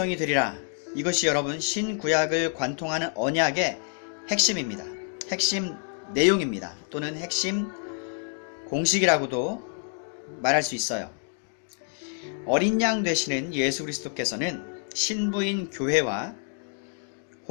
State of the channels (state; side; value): silent; right; 60 dB below the other